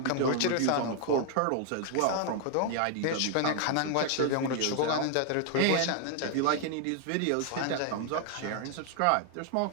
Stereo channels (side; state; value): both; different; correlation 0.00